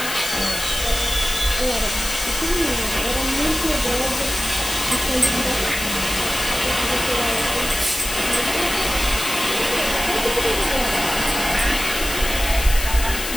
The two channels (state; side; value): noise; left; hiss, 5 dB below the sound